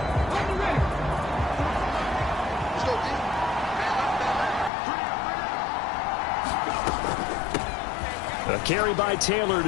A carry by Taylor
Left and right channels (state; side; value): drops out; right; at 4.7 s